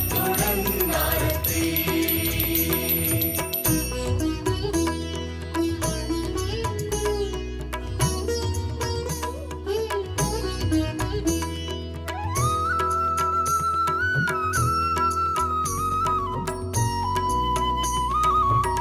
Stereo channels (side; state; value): both; identical; correlation 1.00